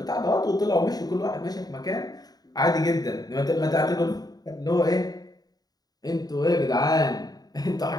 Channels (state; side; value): late; right; 0.19 ms